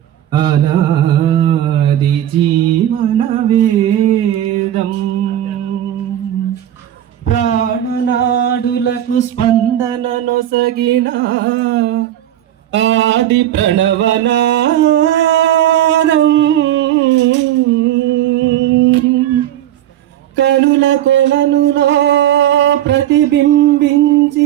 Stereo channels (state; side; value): quieter; left; 12.1 dB